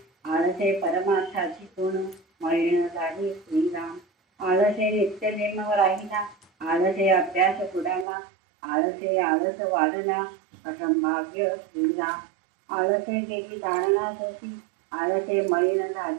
आळसे परमार्थाची गुण, मळीण झाली श्रीराम. आळसे नित्यनेम राहिला, आळसे अभ्यास बुडाला, आळसे आळस वाढला, असंभाव्य श्रीराम. आळसे गेली जाणण्यासाठी, आळसे मळीण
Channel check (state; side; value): drops out; left; at 8.1 s